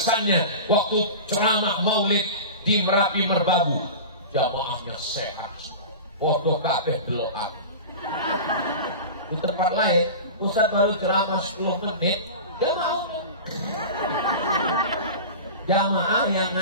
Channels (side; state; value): both; inverted; correlation -0.31